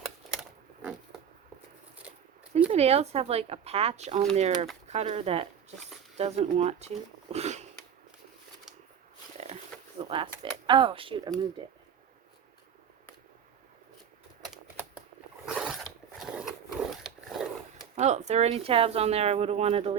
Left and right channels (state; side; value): quieter; left; 8.1 dB